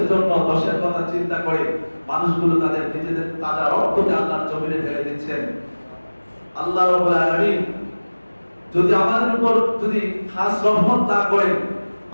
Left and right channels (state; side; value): inverted; both; correlation -1.00